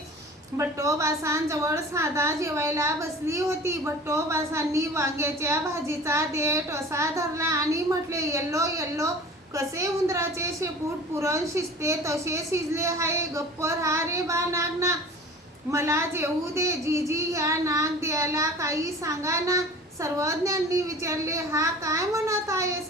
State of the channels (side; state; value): both; normal; correlation 0.41